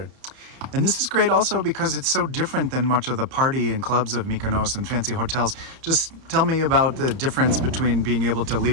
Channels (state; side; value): late; left; 30 ms